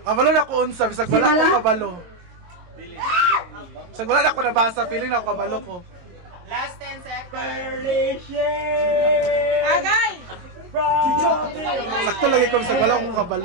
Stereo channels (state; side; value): late; left; 22 ms